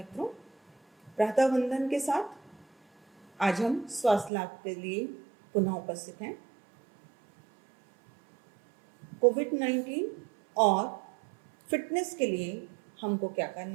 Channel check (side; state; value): left; drops out; at 4.3 s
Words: प्रातः वंदन के साथ आज हम स्वास्थ्य लाभ के लिए पुनः उपस्थित हैं। कोविड-19 और फिटनेस के लिए हमको क्या